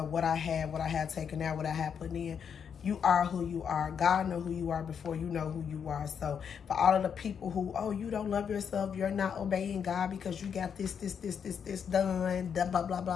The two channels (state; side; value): quieter; right; 7.3 dB